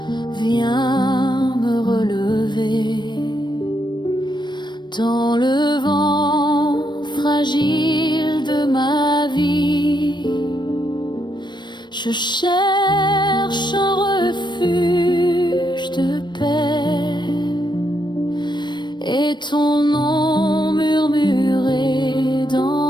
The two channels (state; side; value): late; right; 0.22 ms